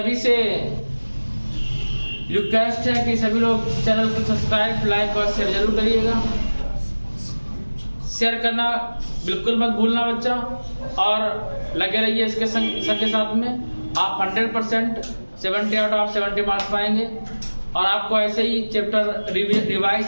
से रिक्वेस्ट है कि सभी लोग चैनल को सब्सक्राइब लाइक और शेयर जरूर करिएगा, शेयर करना बिल्कुल मत भूलना बच्चा, और लगे रहिए इसके सबके साथ में। आप 100% 70 आउट ऑफ 70 मार्क्स पाएंगे और आपको ऐसे ही चैप्टर रिवाइज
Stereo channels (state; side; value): inverted; both; correlation -1.00